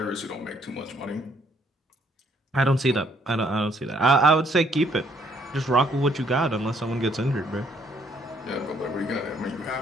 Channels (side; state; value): both; normal; correlation 0.67